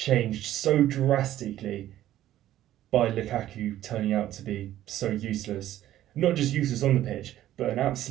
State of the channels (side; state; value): left; quieter; 13.1 dB